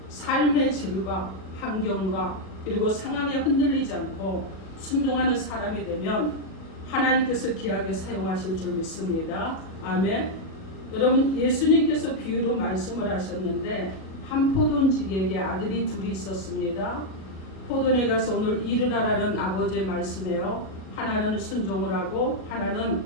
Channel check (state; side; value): late; right; 37 ms